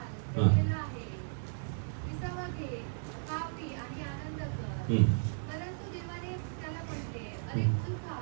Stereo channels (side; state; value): left; silent; digital silence